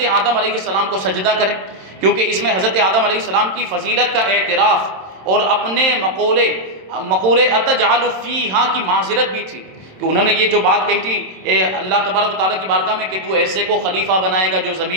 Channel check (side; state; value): left; late; 27 ms